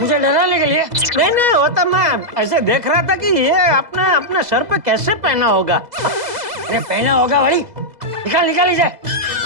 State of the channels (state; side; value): late; left; 2.0 ms